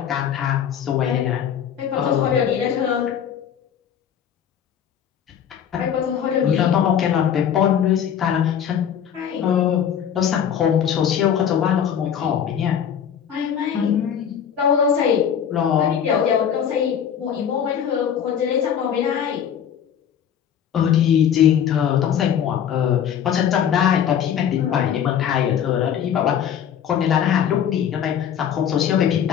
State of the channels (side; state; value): right; quieter; 8.7 dB